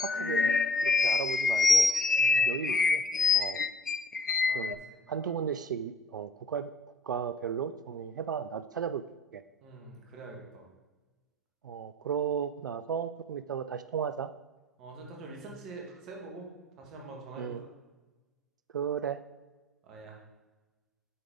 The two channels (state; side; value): normal; both; correlation 0.55